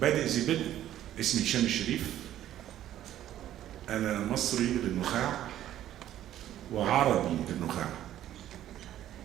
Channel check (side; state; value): left; quieter; 12.3 dB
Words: بادئ ذي بدء. اسمي هشام الشريف، انا مصري للنخاع وعربي للنخاع.